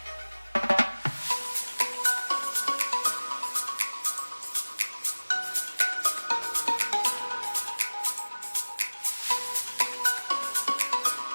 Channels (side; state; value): both; inverted; correlation -1.00